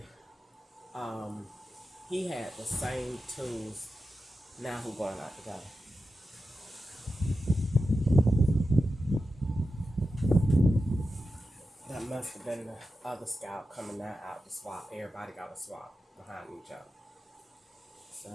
he had the same tools. Now who going out together? That must have been the other scout coming out to swap. Everybody got a swap behind each other. So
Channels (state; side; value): normal; both; correlation 0.91